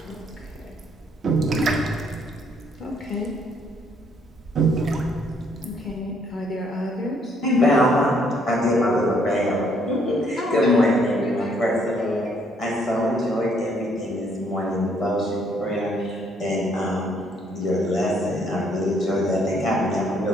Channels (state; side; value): normal; both; correlation 0.67